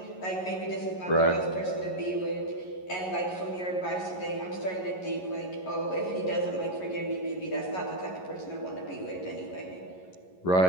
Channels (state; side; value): late; right; 11 ms